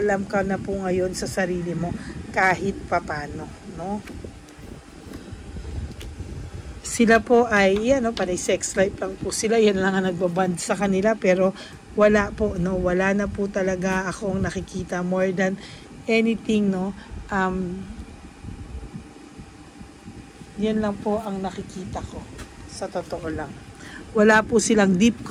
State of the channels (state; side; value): identical; both; correlation 1.00